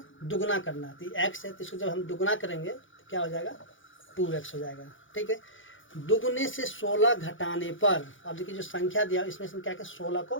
दुगना करना है। तो x है तो इसको जब हम दुगना करेंगे तो क्या हो जाएगा 2x हो जाएगा, ठीक है। दुगने से 16 घटाने पर, अब देखिए जो संख्या दिया इसमें से क्या क्या 16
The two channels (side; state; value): right; late; 0.57 ms